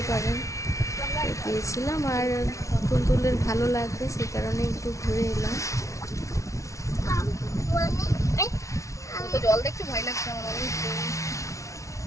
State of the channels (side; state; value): right; late; 0.15 ms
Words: পারেন গিয়েছিলাম। আর তুলতুলের ভালো লাগবে সেই কারণে একটু ঘুরে এলাম। জল দেখতে ভয় লাগছে আমার।